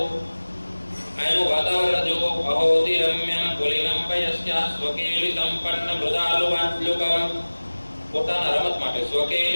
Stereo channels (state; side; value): inverted; both; correlation -1.00